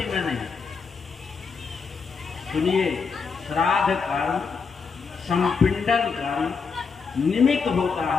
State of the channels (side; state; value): right; quieter; 5.4 dB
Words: में नहीं। सुनिए, श्राद्ध कर्म, संपिंडन कर्म निमित्त होता